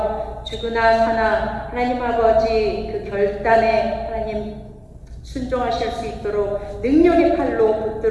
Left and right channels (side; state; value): both; identical; correlation 1.00